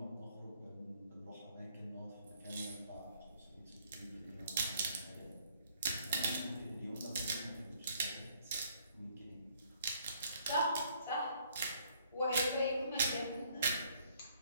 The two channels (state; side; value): inverted; both; correlation -0.64